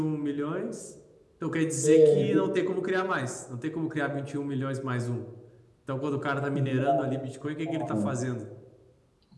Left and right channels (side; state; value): both; identical; correlation 1.00